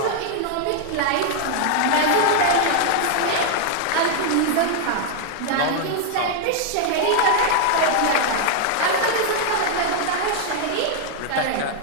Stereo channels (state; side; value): different; both; correlation 0.00